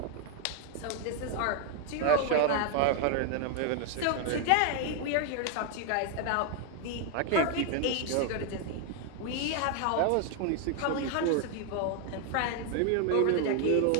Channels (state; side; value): different; both; correlation 0.00